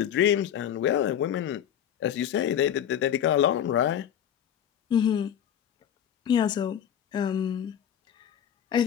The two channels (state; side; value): quieter; right; 9.6 dB